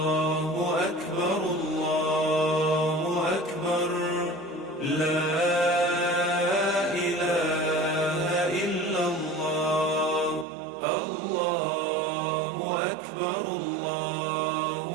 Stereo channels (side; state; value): left; drops out; at 10.5 s